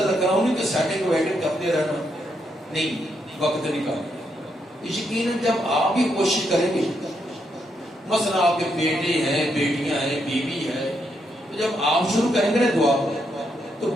رکھنا، انہیں کی سیٹنگ ویٹنگ کرتے رہنا، نہیں وقت نکالنا. یقیناً جب آپ بھی کوشش کریں گے، مثلا آپ کے بیٹے ہیں بیٹیاں ہیں بیوی ہے، تو جب آپ شروع کریں گے نا دعا تو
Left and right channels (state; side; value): normal; both; correlation 0.79